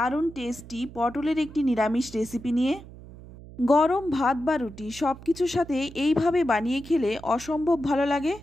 টেস্টি পটলের একটি নিরামিষ রেসিপি নিয়ে। গরম ভাত বা রুটি সব কিছুর সাথে এইভাবে বানিয়ে খেলে অসম্ভব ভালো লাগে।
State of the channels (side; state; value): right; noise; hum, 17 dB below the sound